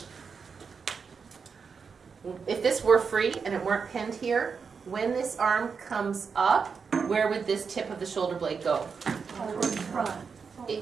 if this were free and it weren't pinned here, when this arm comes up, where would this tip of the shoulder blade go? Over in front.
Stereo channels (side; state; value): left; quieter; 5.7 dB